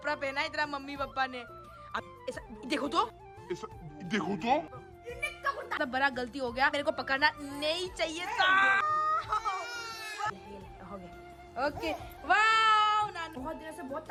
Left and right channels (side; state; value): both; identical; correlation 1.00